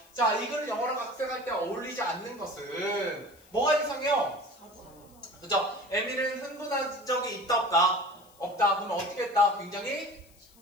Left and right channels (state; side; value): noise; left; hiss, 28 dB below the sound